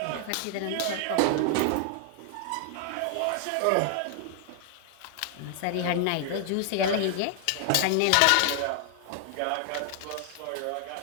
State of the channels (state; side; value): different; both; correlation 0.00